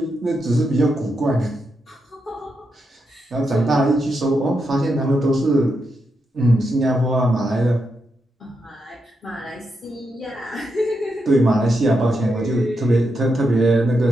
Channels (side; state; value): both; normal; correlation 0.84